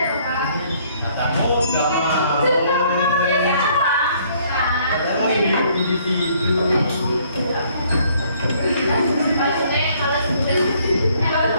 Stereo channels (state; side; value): inverted; both; correlation -0.63